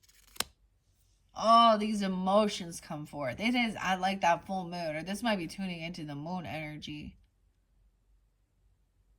Oh, these emotions come forth. It is, I like that full moon. Or this might be tuning into the moon energy.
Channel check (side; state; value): both; identical; correlation 1.00